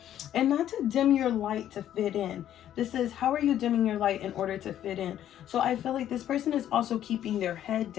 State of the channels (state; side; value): quieter; right; 11.2 dB